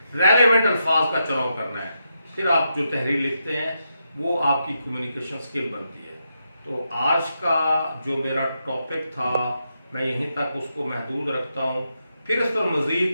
रेलेवेंट अल्फाज का चुनाव करना है, फिर आप जो तहरीर लिखते हैं वो आपकी कम्युनिकेशन स्किल बनती है। तो आज का जो मेरा टॉपिक था मैं यहीं तक उसको महदूद रखता हूँ, फिर इस पर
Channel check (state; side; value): inverted; both; correlation -0.84